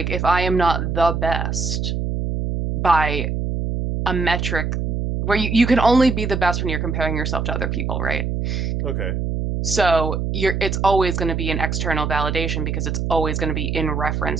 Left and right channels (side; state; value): right; noise; hum, 1 dB below the sound